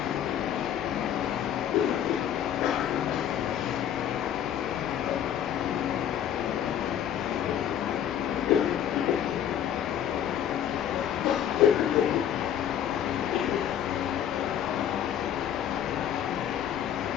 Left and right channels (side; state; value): right; quieter; 9.9 dB